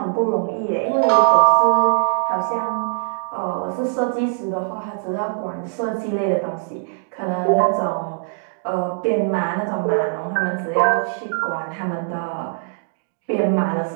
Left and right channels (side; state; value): left; silent; digital silence